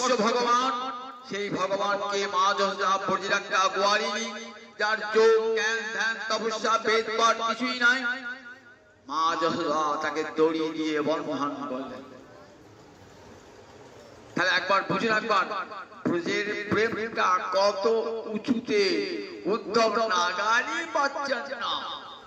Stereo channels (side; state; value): both; identical; correlation 1.00